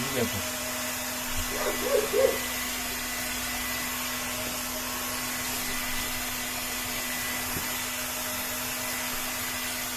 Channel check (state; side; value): identical; both; correlation 1.00